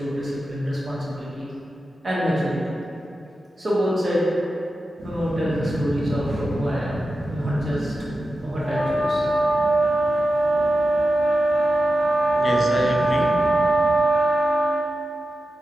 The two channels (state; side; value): normal; both; correlation 0.92